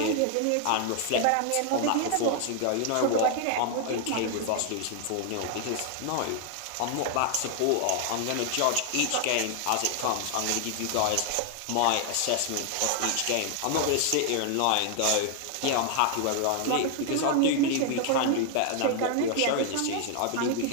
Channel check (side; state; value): both; different; correlation 0.00